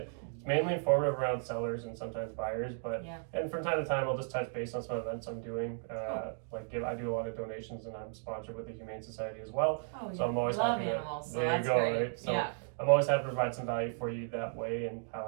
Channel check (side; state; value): left; silent; 55 dB below the other